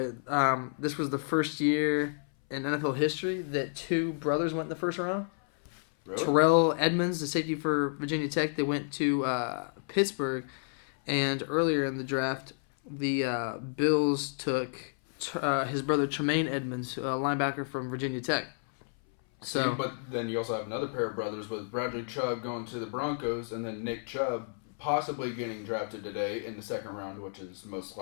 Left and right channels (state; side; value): silent; right; 57 dB below the other